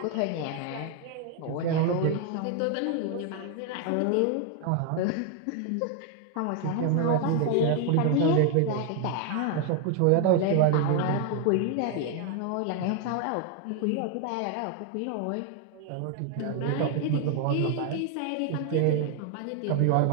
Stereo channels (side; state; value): both; different; correlation 0.00